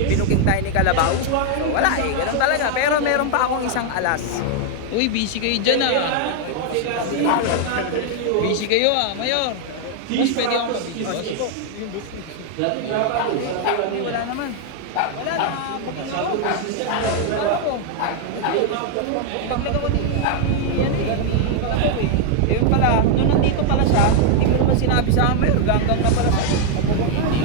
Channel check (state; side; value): different; both; correlation 0.00